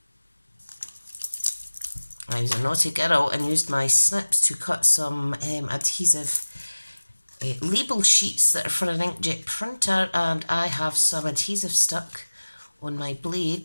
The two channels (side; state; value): both; inverted; correlation -1.00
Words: I was a naughty girl and used my snips to cut some adhesive label sheets that are for an inkjet printer, and I have some adhesive stuck on my